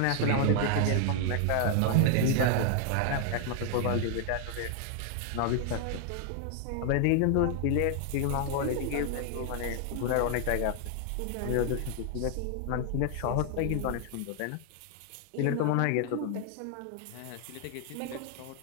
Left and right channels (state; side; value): different; both; correlation 0.00